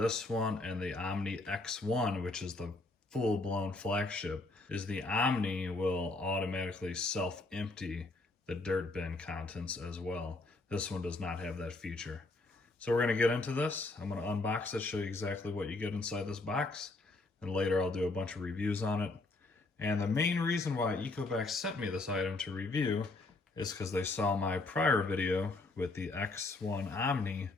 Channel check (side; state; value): right; quieter; 3.2 dB